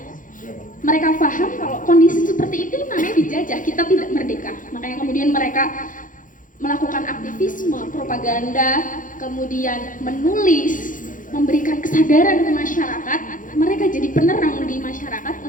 Mereka paham kalau kondisi seperti itu namanya dijajah, kita tidak merdeka. Makanya kemudian mereka melakukan aktivisme, propaganda, kemudian menulis, memberikan kesadaran ke masyarakat. Mereka jadi penerang di masyarakat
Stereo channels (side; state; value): right; late; 0.38 ms